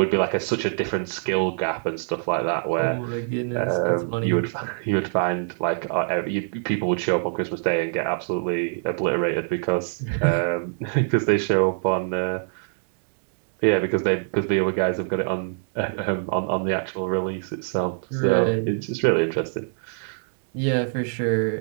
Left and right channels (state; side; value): silent; left; digital silence